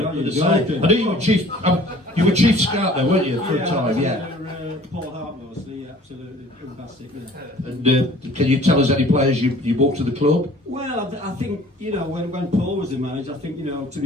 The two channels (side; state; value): both; normal; correlation 0.51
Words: know you were Chief. You were Chief Scout there, weren't you, for a time? Yeah. Paul Hart mostly, absolutely fantastic. Yeah. And can you tell us any players you brought to the club? Well, I think, you know, when Paul was the manager, I think, you know, to